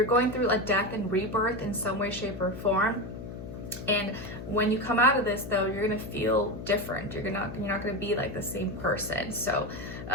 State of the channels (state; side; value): noise; left; hum, 10 dB below the sound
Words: going through a death and rebirth in some way, shape, or form. And when you come out of this, though, you're gonna feel different. You're not gonna be like the same person. So